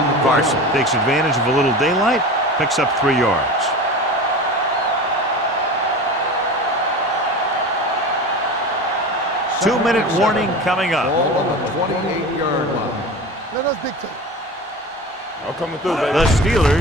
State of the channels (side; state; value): both; normal; correlation 0.32